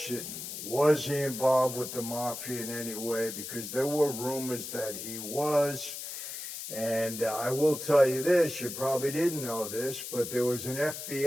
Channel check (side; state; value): left; noise; hiss, 8 dB below the sound